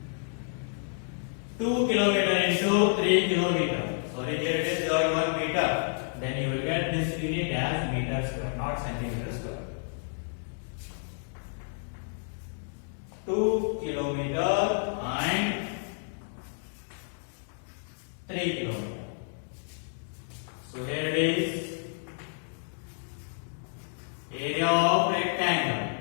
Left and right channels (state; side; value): silent; right; digital silence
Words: 2 kilometer into 3 kilometer. Sorry, here it is 1 meter. Then you will get this unit as meter square, not centimeter square. 2 kilometer and 3 kilometer. So here it is, area of rectangle.